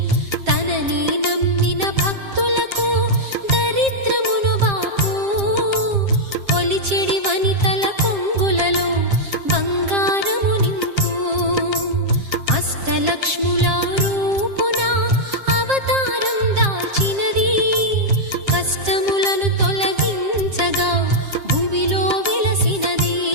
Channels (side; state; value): left; late; 7.5 ms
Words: తనని నమ్మిన భక్తులకు దరిద్రమును బాపు కొలిచెడి వనితల కొంగులలో బంగారము నింపు అష్టలక్ష్ముల రూపున అవతారం దాల్చినది కష్టములను తొలగించగా భూమిలో వెలసినది